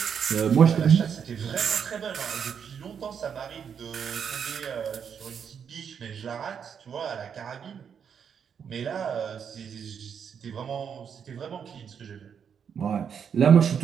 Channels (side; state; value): left; quieter; 7.4 dB